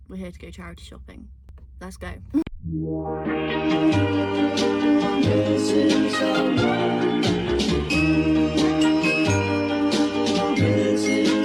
We're here to go charity shopping. Let's go.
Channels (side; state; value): both; identical; correlation 1.00